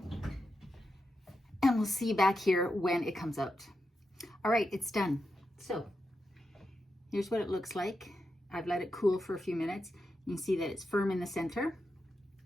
And we'll see you back here when it comes out. All right, it's done. So here's what it looks like. I've let it cool for a few minutes. You can see that it's firm in the center.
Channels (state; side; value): normal; both; correlation 0.86